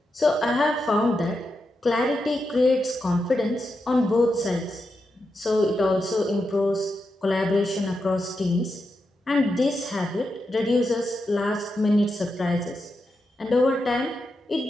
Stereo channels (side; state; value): both; normal; correlation 0.87